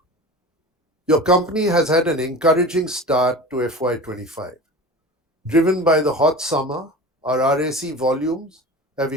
Your company has had an encouraging start to FY25. Driven by the hot summer, our RAC volumes have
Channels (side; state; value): both; normal; correlation 0.35